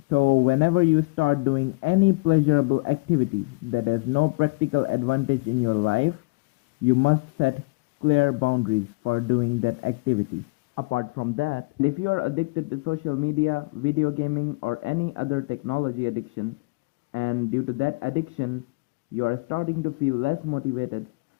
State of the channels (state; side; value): quieter; right; 27.3 dB